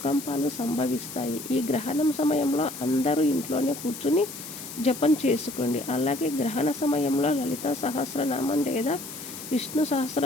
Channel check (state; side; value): noise; left; hiss, 11 dB below the sound